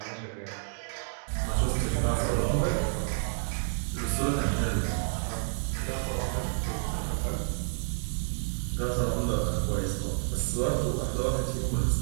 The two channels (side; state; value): left; silent; digital silence